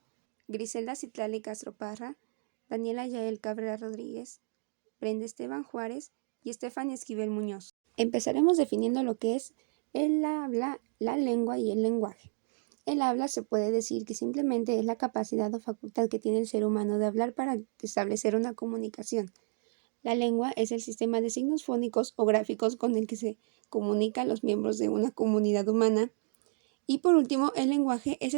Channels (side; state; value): left; silent; 57 dB below the other